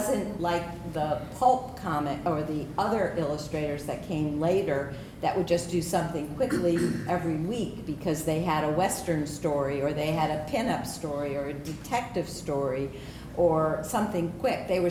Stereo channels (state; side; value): identical; both; correlation 1.00